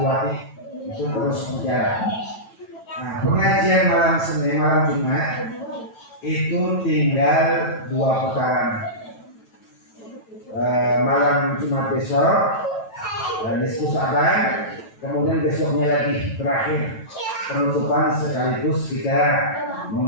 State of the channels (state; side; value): late; right; 9.1 ms